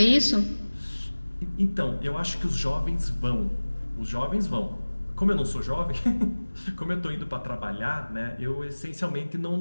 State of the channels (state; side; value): inverted; both; correlation -1.00